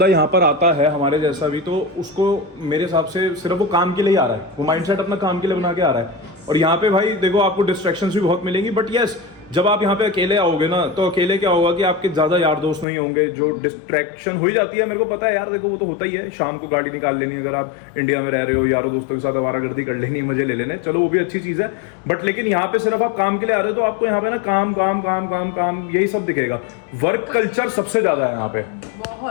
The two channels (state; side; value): drops out; right; at 12.9 s